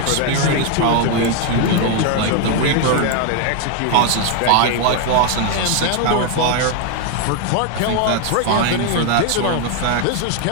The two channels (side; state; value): both; different; correlation 0.01